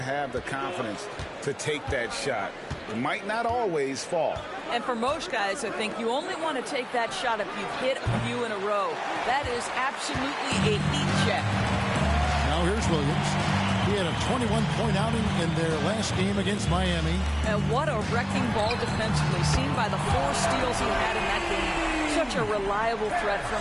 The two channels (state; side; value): identical; both; correlation 1.00